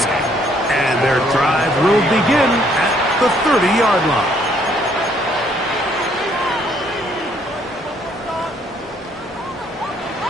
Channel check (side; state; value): both; normal; correlation 0.66